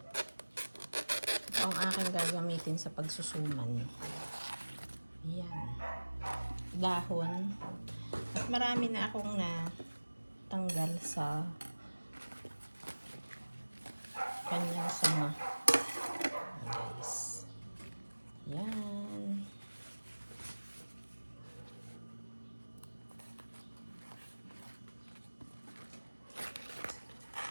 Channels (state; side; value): inverted; both; correlation -1.00